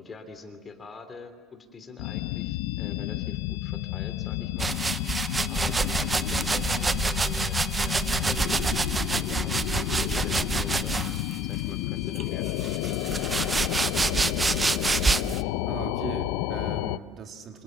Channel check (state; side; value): normal; both; correlation 0.55